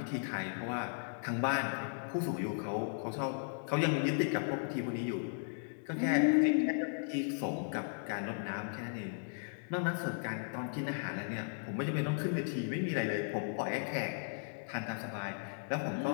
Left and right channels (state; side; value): silent; right; digital silence